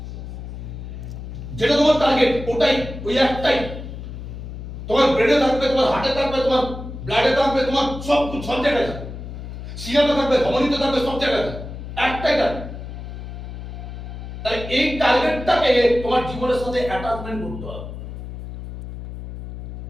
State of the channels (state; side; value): noise; left; hum, 10 dB below the sound